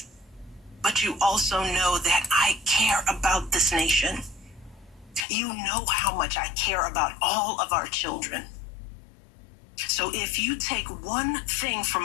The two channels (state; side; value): drops out; right; at 5.2 s